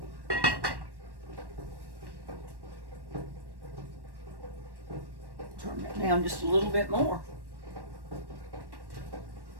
Turn it down just a little bit more.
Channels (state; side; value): late; left; 1.1 ms